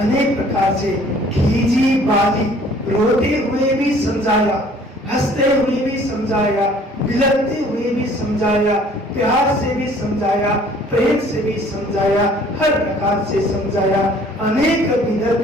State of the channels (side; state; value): both; normal; correlation 0.55